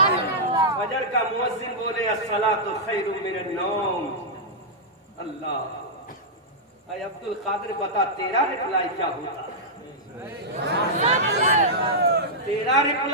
فجر کا مؤذن بولے الصلاۃ خیر من النوم. اللہ، اے عبد القادر بتا تیرا رپلائی کیا ہوتا؟ تیرا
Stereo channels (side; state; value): both; normal; correlation -0.09